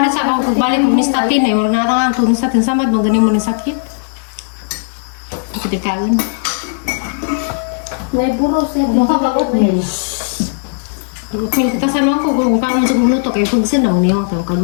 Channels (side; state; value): right; silent; 70 dB below the other